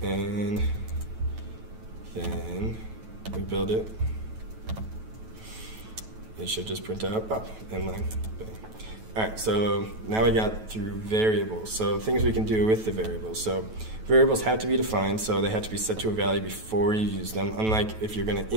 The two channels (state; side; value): late; left; 9.2 ms